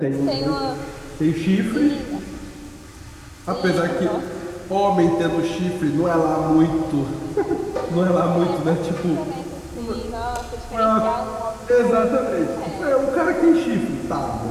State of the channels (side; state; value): both; identical; correlation 1.00